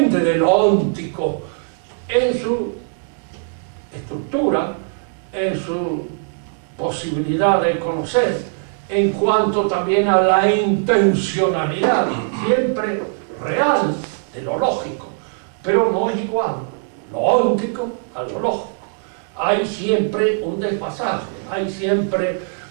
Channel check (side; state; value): left; silent; digital silence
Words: de lo óntico en su estructura, en su posibilidad de conocer, en cuanto también a la intencionalidad, siempre real, de lo lógico, pero no es igual lo óntico a lo lógico. Hay siempre un desfasaje, hay siempre